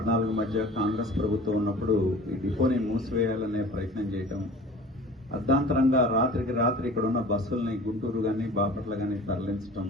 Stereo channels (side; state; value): both; normal; correlation 0.43